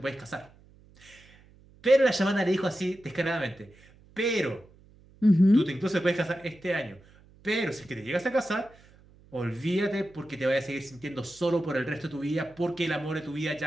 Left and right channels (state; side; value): noise; right; hum, 26 dB below the sound